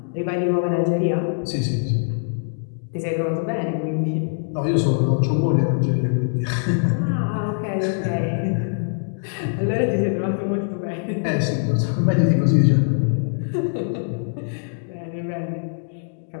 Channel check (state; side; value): silent; right; digital silence